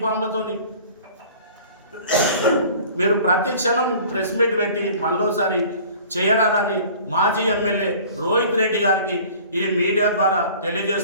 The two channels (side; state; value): both; inverted; correlation -0.46